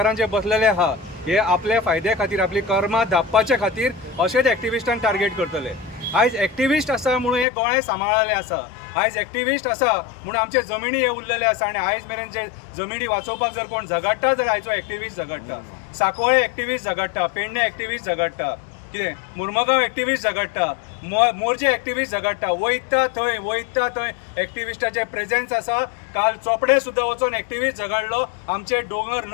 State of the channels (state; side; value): drops out; right; at 7.5 s